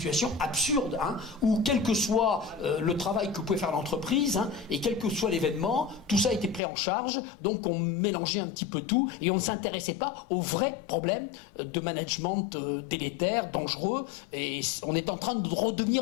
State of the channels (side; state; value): right; drops out; at 6.6 s